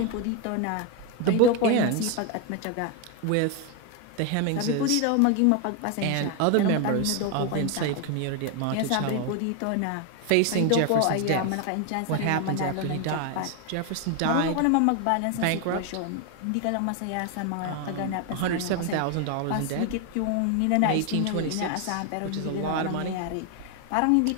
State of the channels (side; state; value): both; different; correlation 0.01